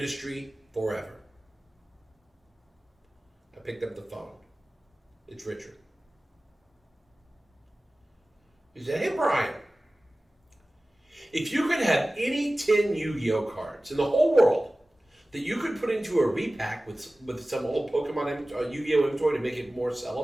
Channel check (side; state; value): both; normal; correlation 0.97